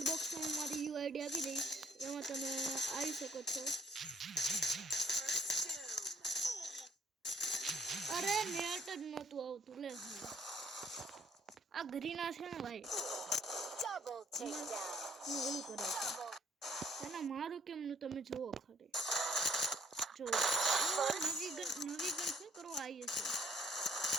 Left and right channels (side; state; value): both; normal; correlation 0.61